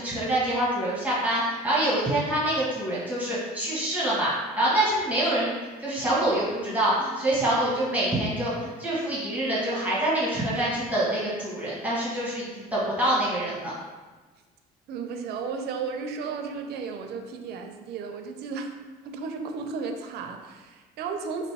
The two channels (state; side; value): normal; both; correlation 0.39